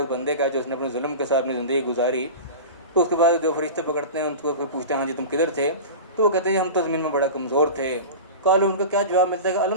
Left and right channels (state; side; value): inverted; both; correlation -0.30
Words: بندے کا جو اس نے اپنے ظلم کے ساتھ اپنی زندگی گزاری، تو اس کے بعد جو فرشتے پکڑتے ہیں ان کو پھر پوچھتے ہیں ہاں جی تم کدھر تھے، تو وہ کہتے ہیں ہم تو زمین میں بڑا کمزور تھے۔ قالوا، ان کا کیا جواب ملتا ہے کہ